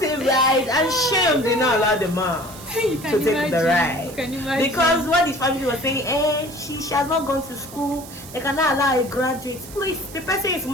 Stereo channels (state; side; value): noise; right; hiss, 16 dB below the sound